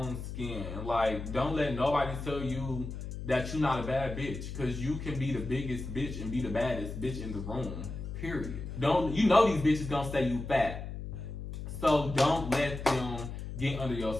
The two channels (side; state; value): left; noise; hum, 7 dB below the sound